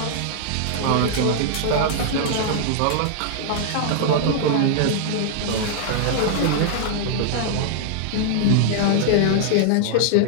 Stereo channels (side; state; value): both; different; correlation -0.01